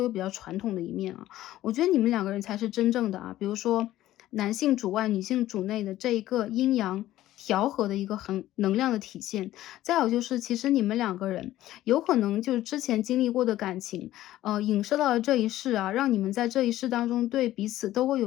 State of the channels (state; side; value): quieter; right; 14.4 dB